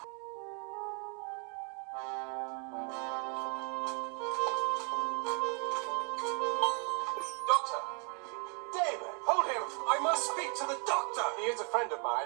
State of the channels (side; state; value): left; quieter; 37.2 dB